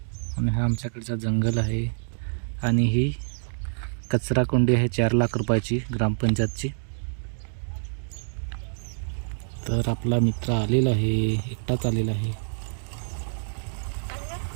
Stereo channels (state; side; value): silent; left; digital silence